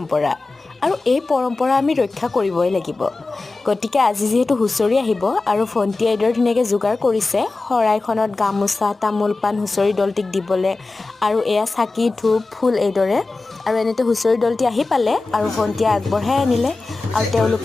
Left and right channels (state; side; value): quieter; right; 3.5 dB